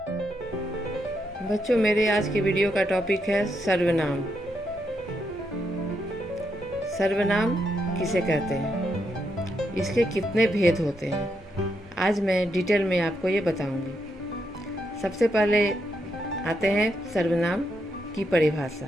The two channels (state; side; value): normal; both; correlation 0.80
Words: बच्चों, मेरे आज की वीडियो का टॉपिक है सर्वनाम। सर्वनाम किसे कहते हैं, इसके कितने भेद होते हैं, आज मैं डिटेल में आपको ये बताऊंगी। सबसे पहले आते हैं सर्वनाम की